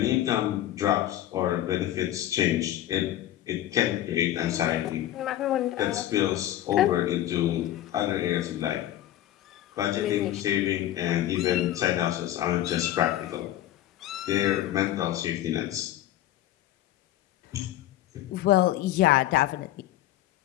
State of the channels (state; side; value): quieter; right; 13.3 dB